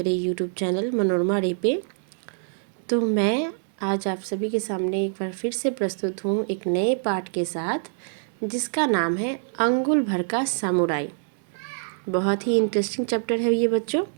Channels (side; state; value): left; silent; digital silence